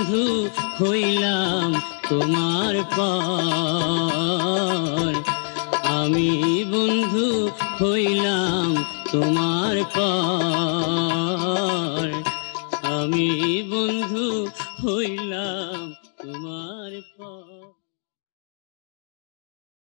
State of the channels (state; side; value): silent; right; 63 dB below the other